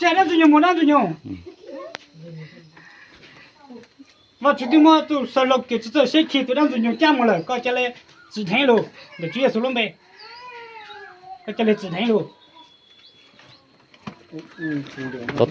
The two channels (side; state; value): both; identical; correlation 1.00